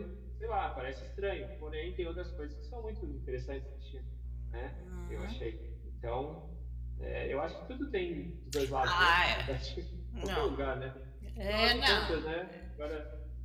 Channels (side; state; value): both; identical; correlation 1.00